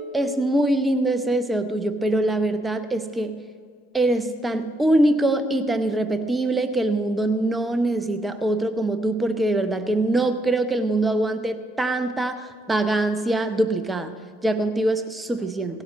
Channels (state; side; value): normal; both; correlation 0.77